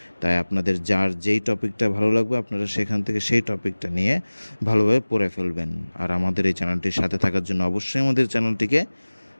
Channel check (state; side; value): inverted; both; correlation -1.00